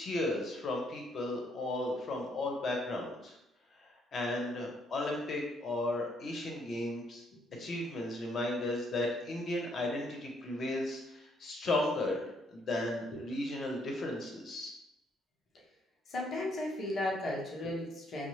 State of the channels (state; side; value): normal; both; correlation 0.70